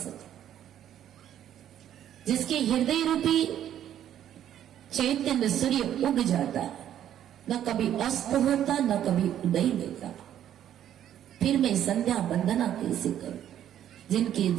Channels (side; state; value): left; quieter; 10.8 dB